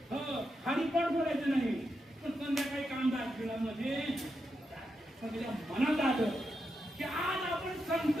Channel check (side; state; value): both; normal; correlation 0.84